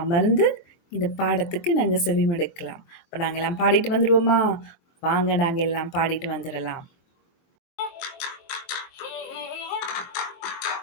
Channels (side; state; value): right; late; 23 ms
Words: இந்த பாடத்துக்கு நாங்க செவிமடுக்கலாம். அப்ப நாங்க எல்லாம் பாடிட்டு வந்துருவோமா? வாங்க நாங்க எல்லாம் பாடிட்டு வந்துரலாம்.